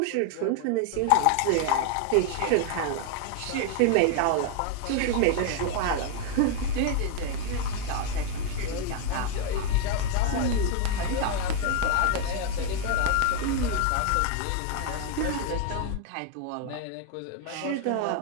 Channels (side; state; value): both; different; correlation 0.00